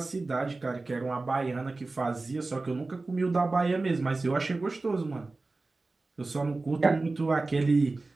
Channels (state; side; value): quieter; left; 3.4 dB